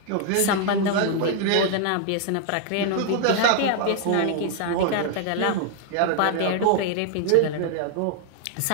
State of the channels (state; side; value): different; both; correlation 0.00